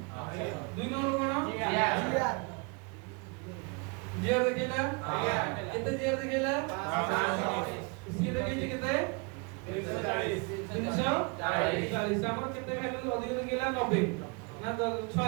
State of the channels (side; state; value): left; quieter; 31.7 dB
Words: दुई नंबर कोन जीआर देखिला केते जीआर देखिला सी देखिछि केते 340 हमर केते वैल्यू अधिक देखिला 90 ना 6